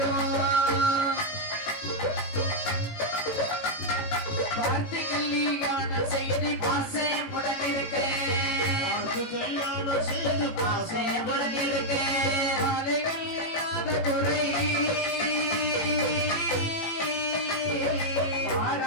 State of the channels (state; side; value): late; right; 18 ms